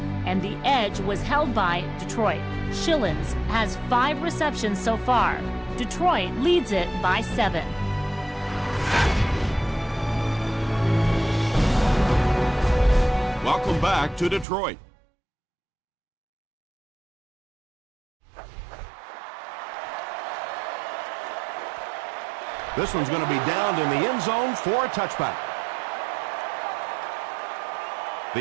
and the edge was held by Detroit. Shillings has 5 receptions so far. Detroit leads it by 7. Welcome back to Detroit. This one's going to be downed in the end zone for a touchback.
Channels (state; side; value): drops out; left; at 14.5 s